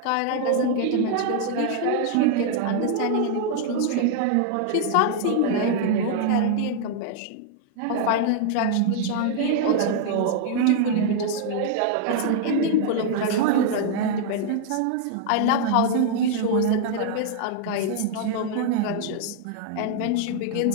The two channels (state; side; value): different; both; correlation 0.00